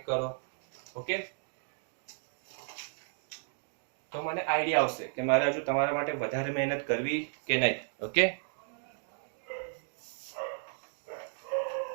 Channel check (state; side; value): silent; left; digital silence